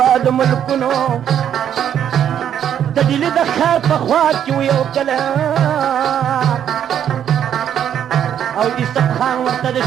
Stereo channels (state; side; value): quieter; left; 9.5 dB